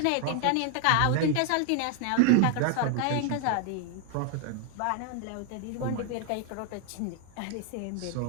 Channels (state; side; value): different; both; correlation 0.00